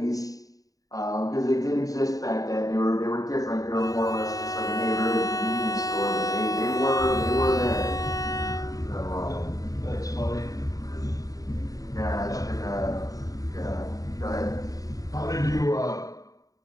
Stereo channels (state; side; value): late; right; 0.17 ms